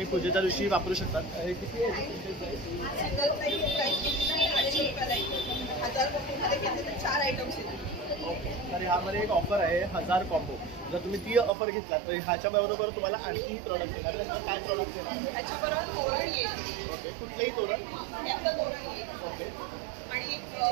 पूजेच्या दिवशी वापरू शकता. हे किती आहे? 4 आयटम्स. ओके, तर ह्यामध्ये एक ऑफर आहे 1000 कॉम्बो. जर तुम्ही ती ऑफर घेतलात तर ह्याच्या बरोबर तुम्हाला आणखी प्रॉडक्ट येणार. काय प्रॉडक्ट येणार आहे? त्याच्याबरोबर तोरण येईल. ओके, कुठलेही तोरण? त्याचं तोरण येईल. ओके, आणि एक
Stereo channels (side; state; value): left; drops out; at 11.5 s